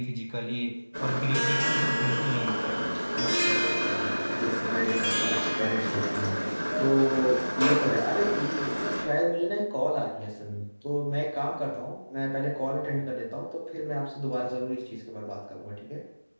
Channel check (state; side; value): inverted; both; correlation -1.00